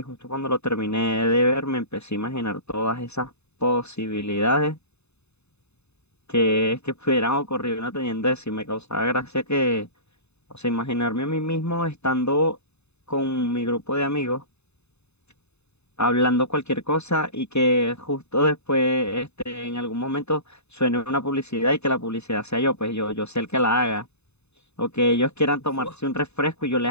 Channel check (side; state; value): right; late; 0.81 ms